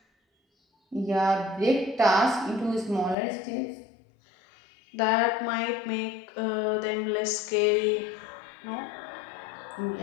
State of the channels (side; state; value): right; drops out; at 3.2 s